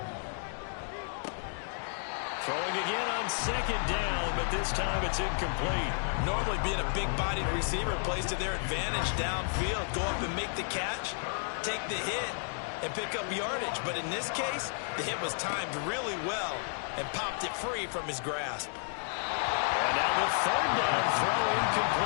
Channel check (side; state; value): right; silent; 56 dB below the other